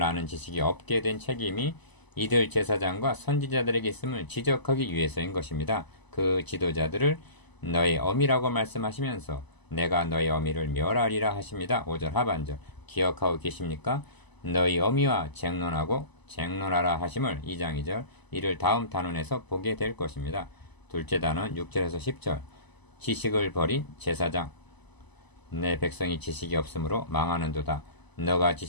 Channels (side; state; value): right; late; 1.0 ms